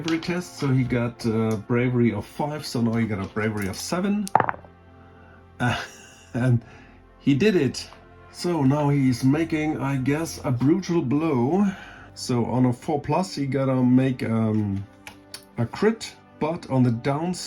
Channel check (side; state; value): both; identical; correlation 1.00